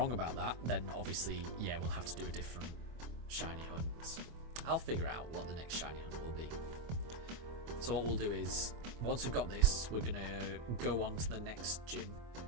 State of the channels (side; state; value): left; late; 24 ms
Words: about that, then obviously, yeah, we'll have to do a different shiny hunt. I'll figure out what the next shiny hunt will be. So what we'll do is, once we've got this, we're gonna go on to the next gym,